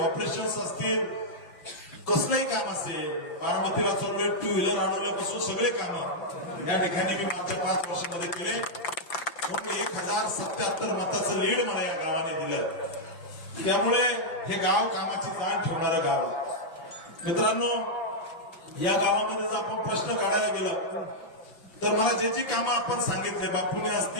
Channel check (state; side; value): late; right; 6.0 ms